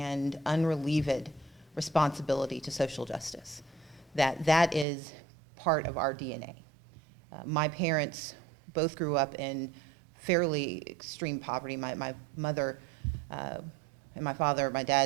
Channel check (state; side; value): drops out; left; at 4.9 s